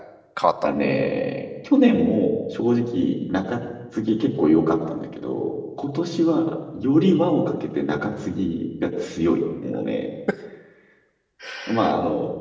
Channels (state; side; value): identical; both; correlation 1.00